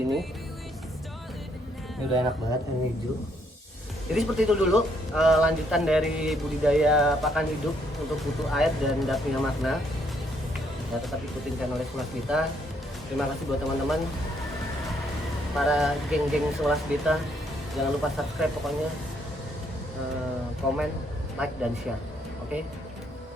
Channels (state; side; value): normal; both; correlation 0.71